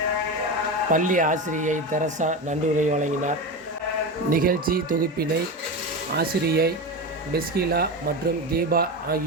பள்ளி ஆசிரியை தெரசா நன்றியுரை வழங்கினார். நிகழ்ச்சி தொகுப்பினை ஆசிரியை பெஸ்கிலா மற்றும் தீபா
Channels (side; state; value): both; normal; correlation 0.21